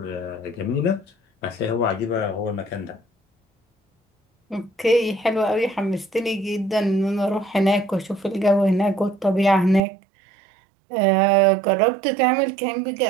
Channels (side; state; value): left; drops out; at 9.8 s